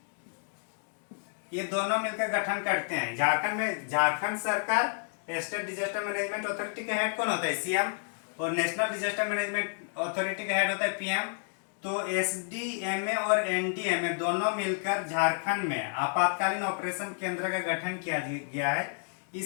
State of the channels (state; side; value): silent; right; 58 dB below the other